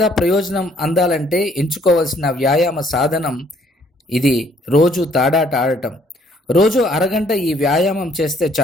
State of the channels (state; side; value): normal; both; correlation 0.64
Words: ప్రయోజనం అందాలంటే ఎంచుకోవాల్సిన వ్యాయామ సాధనం ఇది రోజు తాడాట ఆడటం. రోజు అరగంట ఈ వ్యాయామం చేస్తే